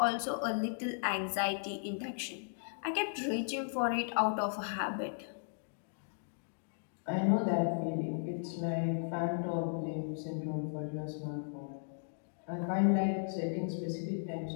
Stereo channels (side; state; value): right; silent; digital silence